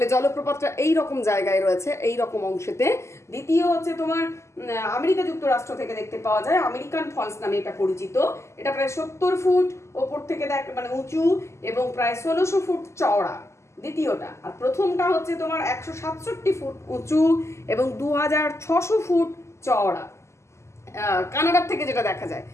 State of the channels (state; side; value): late; right; 0.13 ms